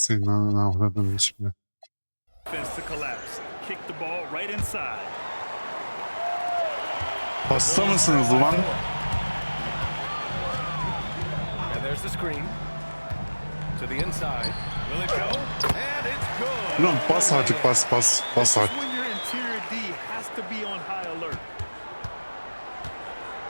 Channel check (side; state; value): both; inverted; correlation -1.00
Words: avradın şimdi. defense to collapse. Kick the ball right inside. Hasta mısınız ulan? And there's the screen. To the inside. Will it go? And it's good. Ulan bas artık bas This is artık. when your interior D has to be on high alert.